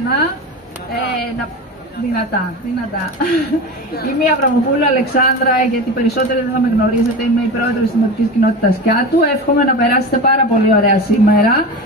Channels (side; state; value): both; normal; correlation 0.27